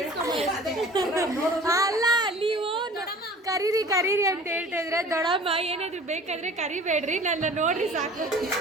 ಅಲ್ಲ ನೀವು ಕರೀರಿ ಕರೀರಿ ಅಂತ ಹೇಳ್ತಾ ಇದ್ರೆ ದೊಡ್ಡಮ್ಮ ಏನಾದ್ರು ಬೇಕಾದ್ರೆ ಕರಿಬೇಡ್ರಿ, ನನ್ನ ನೋಡ್ರಿ ಸಾಕು.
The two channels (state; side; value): normal; both; correlation 0.45